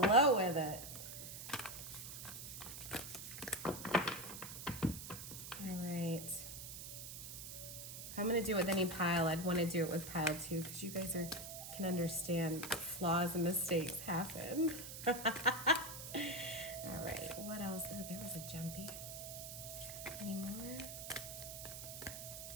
with it. All right. If I'm gonna do it with any pile, I'd want to do it with pile 2 because you guys can understand flaws and mistakes happen. All right. What else? Oh, there was a jumpy. Any more?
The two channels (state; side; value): noise; right; hiss, 9 dB below the sound